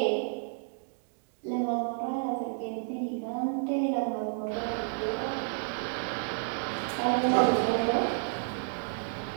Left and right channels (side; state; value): left; silent; digital silence